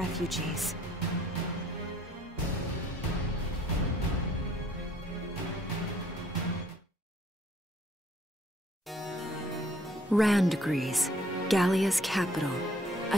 Randgries, Gallia's capital,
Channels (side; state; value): both; normal; correlation 0.62